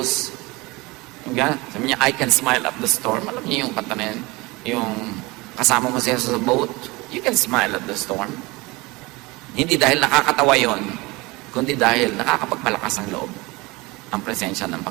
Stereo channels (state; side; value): quieter; left; 23.5 dB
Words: sabi niya, I can smile at the storm. Alam niyo yung kanta na yan? Yung kasama mo si Jesus sa boat, you can smile at the storm. Hindi dahil nakakatawa yon, kundi dahil nakakapagpalakas ang loob ang presensya ng